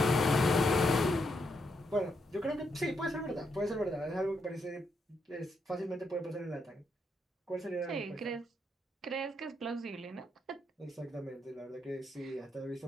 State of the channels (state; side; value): normal; both; correlation 0.79